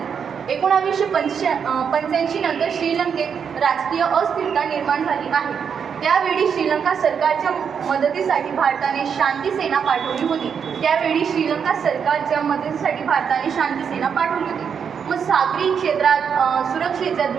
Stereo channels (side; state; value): left; quieter; 7.0 dB